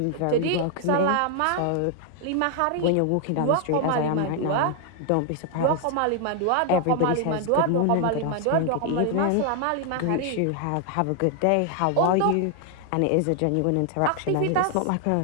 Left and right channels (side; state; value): both; different; correlation 0.00